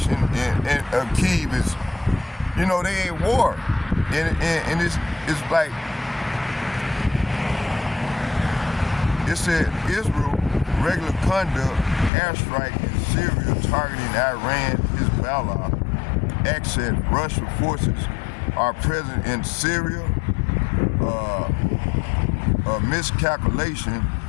in Kyiv is, you know, they ain't war, and it's like, it said Israel regular conduct airstrike in Syria targeting Iran, Hezbollah, access Russian forces are present in Syria, a miscalculation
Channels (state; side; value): drops out; right; at 12.1 s